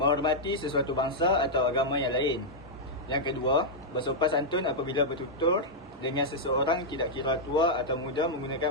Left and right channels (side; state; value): both; normal; correlation -0.06